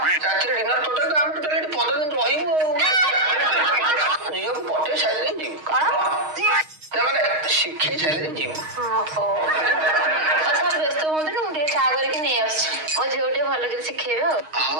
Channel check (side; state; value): left; late; 6.4 ms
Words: ରାତିରେ ଡିନର ଟୋଟାଲ ଆମେ ଟୋଟାଲ ଏଠି 15 ଦିନ ରହିବୁ। ଝିଅକୁ ପଠେଇ ସାରିଲେ ଯିବୁ। କଣ? ତାମାନେ ଶିଖେଇ ସାରିଲେ ଯିବୁ। ଓହୋ ସାର୍ ବ୍ୟସ୍ତ ହୁଅନ୍ତୁନି, ମୁଁ ଟିକେ ଚା କରିକି ନେଇ ଆସୁଛି। ମୋ ଝିଅ ଟିକେ ଭଲ କରି ଶିଖେଇବେ ଆଉ।